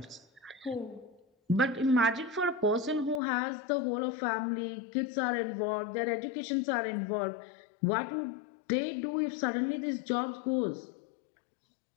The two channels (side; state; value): right; drops out; at 3.2 s